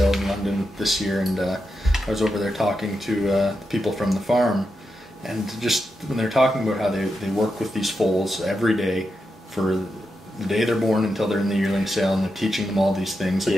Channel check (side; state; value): both; normal; correlation 0.87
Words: in London this year, and I was over there talking to the people from the farm, and just when they're talking about how they work with these foals every day for the day they're born until they're in the yearling sale, and they're teaching them all these things, like